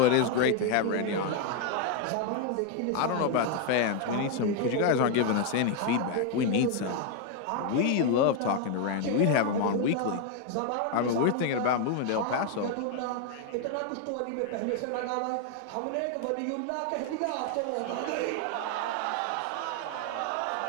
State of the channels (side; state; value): both; different; correlation 0.01